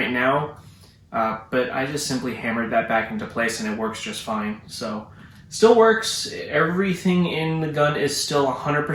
now, but I just simply hammered that back into place and it works just fine. So still works. Everything in the gun is still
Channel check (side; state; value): both; identical; correlation 1.00